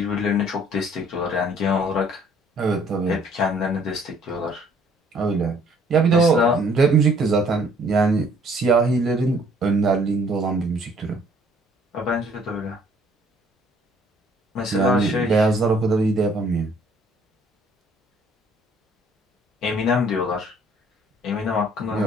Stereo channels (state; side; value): normal; both; correlation 0.60